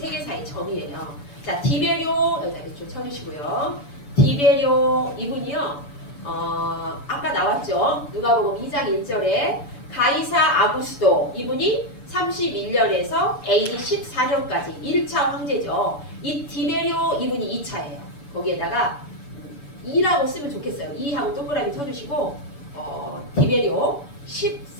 점이에요. 자, 디베료 여기다 이렇게 쳐주시고요. 디베료 이분이요. 아까 나왔죠. 누가복음 2장 1절에 가이사 아구스도 이분이 31년에서 AD 14년까지 1차 황제죠. 이 디베료 이분이 2차예요. 거기에다가 2라고 쓰면 좋겠어요. 2하고 동그라미 쳐주시고 디베료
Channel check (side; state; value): right; late; 6.9 ms